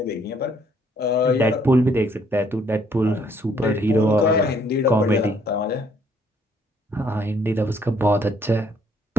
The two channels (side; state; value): both; normal; correlation 0.66